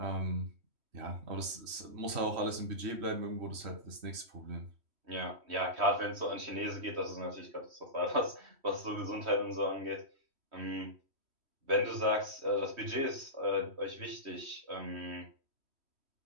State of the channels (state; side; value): late; left; 3.1 ms